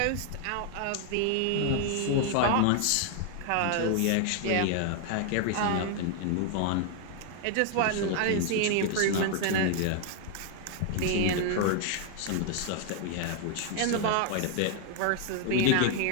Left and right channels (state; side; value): different; both; correlation 0.00